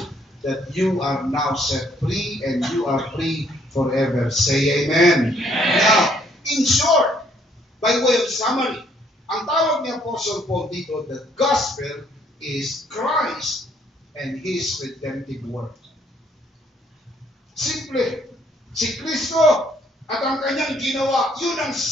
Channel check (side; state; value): both; normal; correlation 0.66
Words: that you are now set free and you are free forever. Say amen. Now, in short, by way of summary, ang tawag ni Apostle Paul dito, the gospel is Christ and His redemptive work. Simple. Si Kristo at ang kanyang ginawa, yun ang